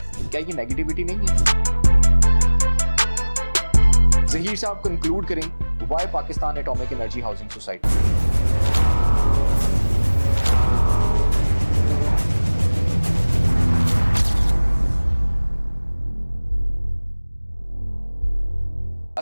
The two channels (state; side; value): inverted; both; correlation -1.00